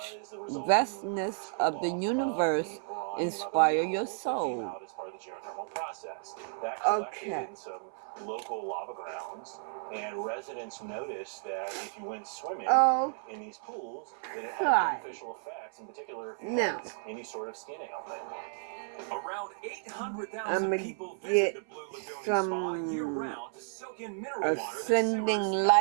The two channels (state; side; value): silent; left; 56 dB below the other